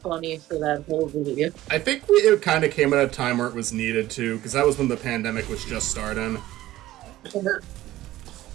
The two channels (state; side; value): quieter; left; 15.5 dB